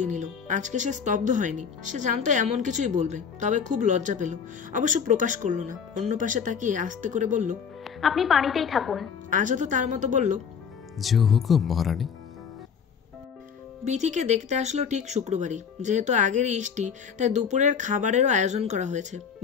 নিল। আজকে সে স্তব্ধ হয়নি। সে জানতো এমন কিছুই বলবে, তবে খুব লজ্জা পেল। অবশ্য প্রকাশ করলো না। অন্য পাশে তাকিয়ে আস্তে করে বলল, আপনি পানিতেই থাকুন। আজাদও তার মতো বলল, যে হুকুম মহারানী। বিথিকে দেখতে আসলো ঠিক শুক্রবারই। যেহেতু আগের ইষ্টি, তাই দুপুরের খাবারেরও আয়োজন করা হয়েছে।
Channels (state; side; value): quieter; right; 6.8 dB